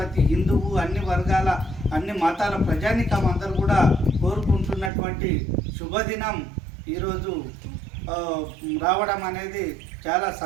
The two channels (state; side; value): drops out; left; at 4.9 s